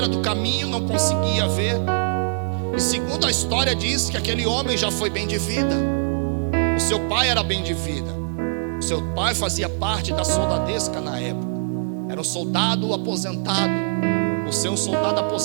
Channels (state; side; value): silent; left; digital silence